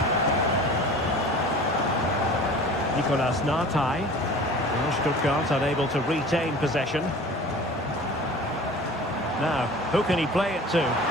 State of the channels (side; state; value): both; normal; correlation 0.42